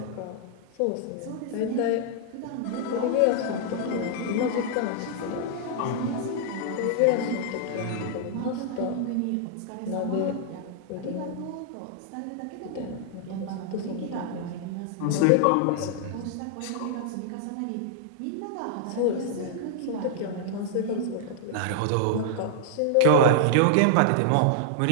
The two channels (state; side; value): different; both; correlation -0.01